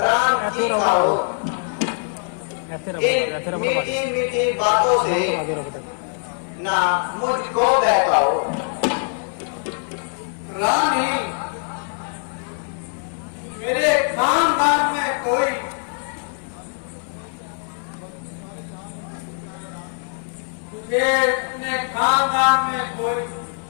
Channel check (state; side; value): silent; right; 64 dB below the other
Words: राम की का हो। ऐसे इन रबर मीठी मीठी बातों से ना मुझको बहकाओ। रानी, मेरे खानदान में कोई तुझे अपने खानदान में कोई,